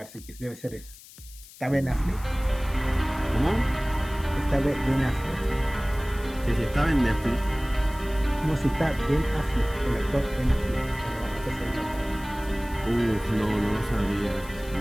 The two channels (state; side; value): noise; left; hiss, 20 dB below the sound